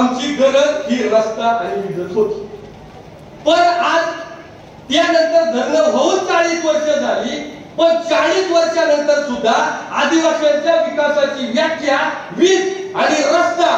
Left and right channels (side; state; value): both; identical; correlation 1.00